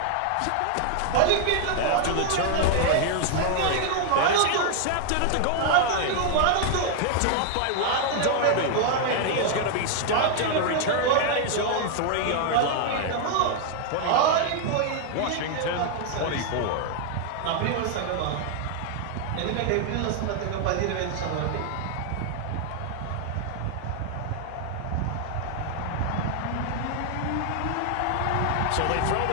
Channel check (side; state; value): both; different; correlation 0.00